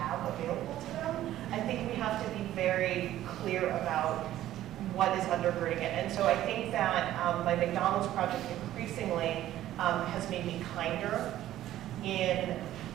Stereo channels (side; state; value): left; quieter; 13.4 dB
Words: available to them, I think we have to be very clear about what is undergirding it. And so I think that my McDonald's project increasingly has made me kinder in